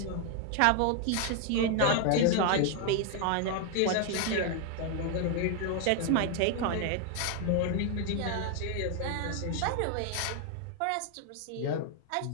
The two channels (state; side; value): different; both; correlation 0.00